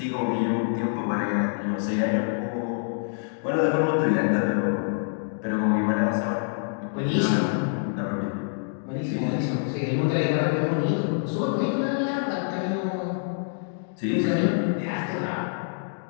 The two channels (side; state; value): right; silent; digital silence